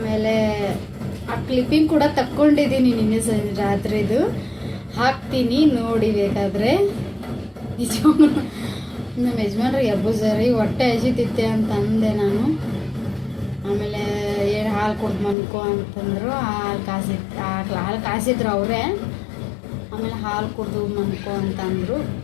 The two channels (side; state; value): right; drops out; at 15.4 s